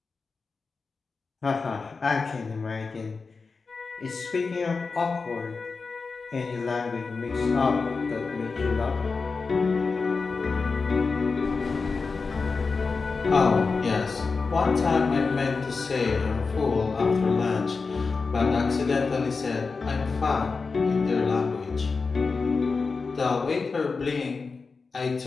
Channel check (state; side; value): quieter; right; 4.5 dB